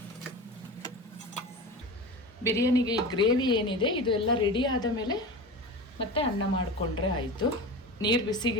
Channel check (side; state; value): both; normal; correlation 0.29